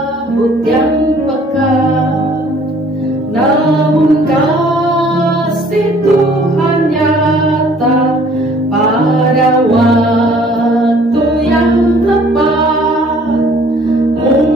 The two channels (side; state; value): both; normal; correlation 0.56